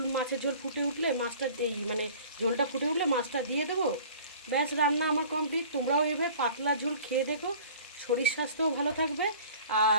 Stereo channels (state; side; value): inverted; both; correlation -0.47